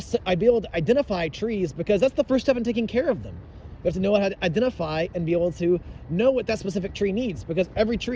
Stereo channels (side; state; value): both; identical; correlation 1.00